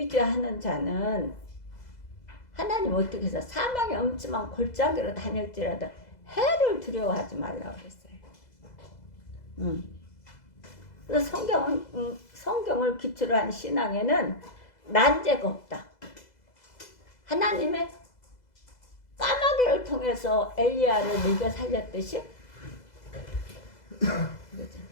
자는 하나님 어떻게 해서 사망의 엄침한 골짜기로 다닐지라도 해를 두려워하지 말라고 그랬어요. 그래서 성경을 기초로 한 신앙에는 난제가 없다. 하나님의 까마귀를 통해서 엘리야를 먹여 살렸듯이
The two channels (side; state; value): right; late; 2.0 ms